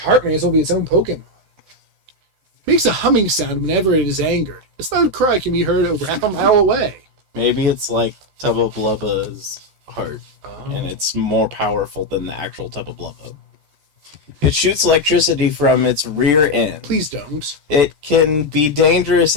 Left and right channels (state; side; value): late; left; 14 ms